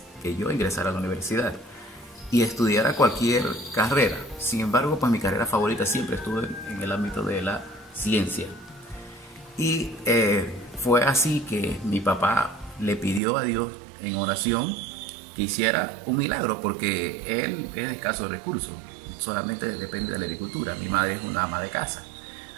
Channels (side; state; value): left; drops out; at 13.2 s